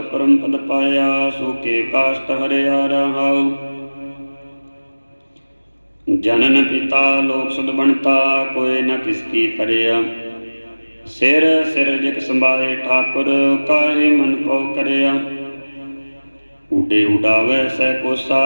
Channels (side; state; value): both; inverted; correlation -1.00